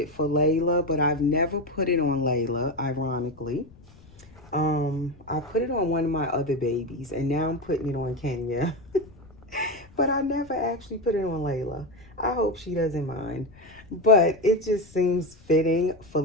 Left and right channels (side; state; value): left; noise; rumble, 24 dB below the sound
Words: for Layla, but I've never put it on Layla, ironically. I put it on one of my other babies, and now I'm putting it on Kenya. But I never actually put it on Layla. I hope she doesn't mind. But it just seems fitting for